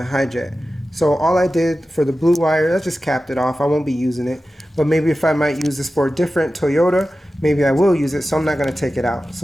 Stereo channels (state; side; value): normal; both; correlation 0.94